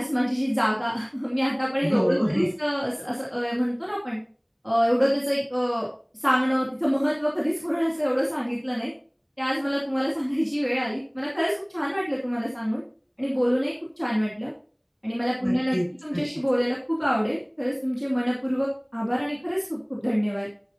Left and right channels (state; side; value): identical; both; correlation 1.00